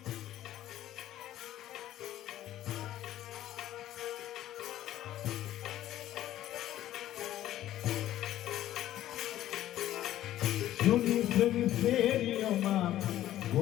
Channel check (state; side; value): quieter; right; 13.2 dB